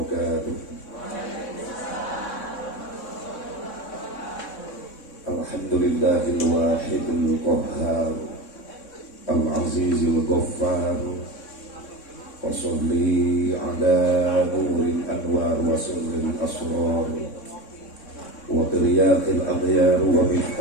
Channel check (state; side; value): late; right; 3.6 ms